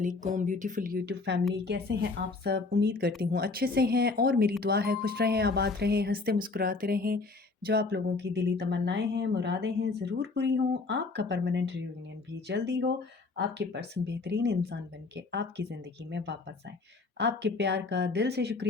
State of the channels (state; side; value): quieter; right; 3.8 dB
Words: ब्यूटीफुल यूट्यूब फैमिली, कैसे हैं आप सब? उम्मीद करती हूँ अच्छे से हैं और मेरी दुआ है खुश रहें, आबाद रहें, हंसते मुस्कुराते रहें। जो आप लोगों की दिली तमन्नाएं हैं, मुरादें हैं, ज़रूर पूरी हों। आपका परमानेंट रियूनियन भी जल्दी हो। आपके पर्सन बेहतरीन इंसान बन के आपकी ज़िंदगी में वापस आए। आपके प्यार का दिल से